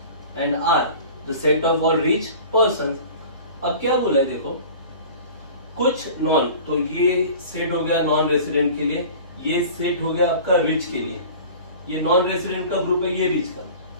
and R the set of all rich persons. अब क्या बोला है देखो, कुछ नॉन, तो ये सेट हो गया नॉन रेसिडेंट के लिए, ये सेट हो गया आपका रिच के लिए. ये नॉन रेसिडेंट का ग्रुप है, ये रिच का.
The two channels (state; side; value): inverted; both; correlation -0.41